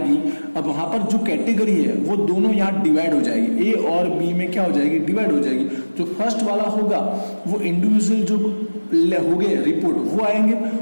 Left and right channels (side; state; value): both; inverted; correlation -1.00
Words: अब वहां पर जो कैटेगरी है वो दोनों यहाँ डिवाइड हो जाएगी, ए और बी में क्या हो जाएगी, डिवाइड हो जाएगी। जो फर्स्ट वाला होगा वो इंडिविजुअल जो हो गए रिपोर्ट वो आएंगे,